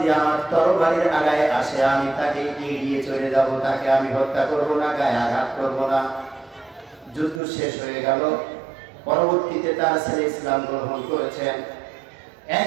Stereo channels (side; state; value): left; drops out; at 7.4 s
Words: আমার তরবারির আগায় আসে আমি তাকে এড়িয়ে চলে যাব, তাকে আমি হত্যা করব না, গায়ে আঘাত করব না। যুদ্ধ শেষ হয়ে গেল। পরবর্তীতে তার ছেলে ইসলাম গ্রহণ করেছেন।